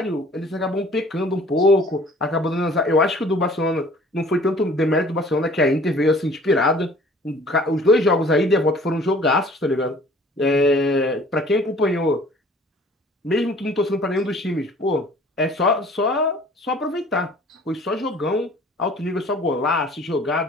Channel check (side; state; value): both; normal; correlation 0.52